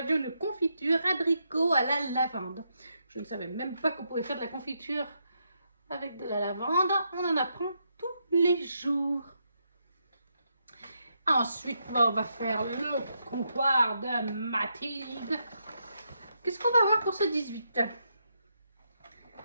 une confiture abricot à la lavande. Je ne savais même pas qu'on pouvait faire de la confiture avec de la lavande. On en apprend tous les jours. Ensuite, on va faire le comptoir de Mathilde. Qu'est-ce qu'on va voir pour ce 18?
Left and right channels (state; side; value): inverted; both; correlation -0.80